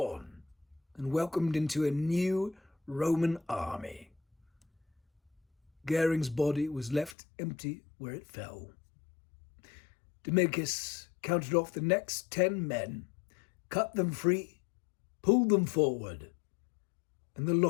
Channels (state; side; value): drops out; right; at 7.2 s